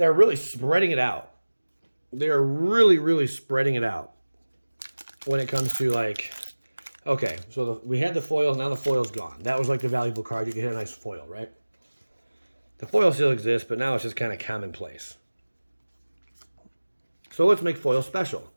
really spreading it out. They are really, really spreading it out when it comes to like, okay, so we had the foil, now the foil's gone. That was like the valuable card. You could hit a nice foil, right? The foil still exists, but now it's just kind of commonplace. So let's make foil special.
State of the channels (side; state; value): both; inverted; correlation -1.00